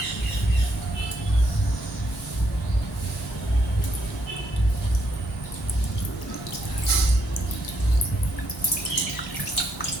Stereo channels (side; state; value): both; normal; correlation 0.74